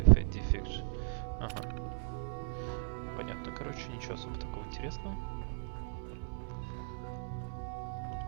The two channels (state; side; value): silent; left; 53 dB below the other